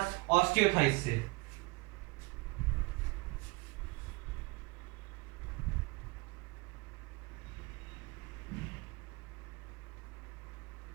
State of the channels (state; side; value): quieter; left; 24.7 dB